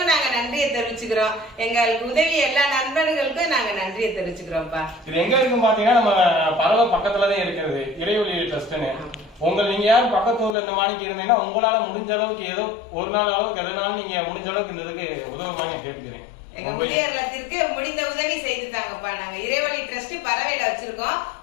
நாங்க நன்றியை தெரிவிச்சுக்கிறோம். எங்களுக்கு உதவி எல்லா நண்பர்களுக்கும் நாங்க நன்றியை தெரிவிச்சுக்கிறோம்ப்பா. இது எங்க இருக்கு பாத்தீங்கன்னா நம்ம பறவை பக்கத்துலதான் இருக்கிறது இறைவழி ட்ரஸ்ட்னு. நீங்க யாரும் பக்கத்து ஊர்ல இந்த மாணிக்கு இருந்தீங்கன்னா உங்களால முடிஞ்ச அளவுக்கு ஏதோ ஒரு நாள் அளவுக்கு எதனாலும் நீங்க முடிஞ்ச அளவுக்கு இந்த இதுக்கு உதவுமான்னு கேட்டுக்கிறேன். எங்க முதியோர் இல்லத்திற்கு முடிந்த உதவி செய்து தாங்கப்பா. நாங்க இறைவழி ட்ரஸ்ட் பறவையில வச்சிருக்கோம்.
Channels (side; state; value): right; drops out; at 10.6 s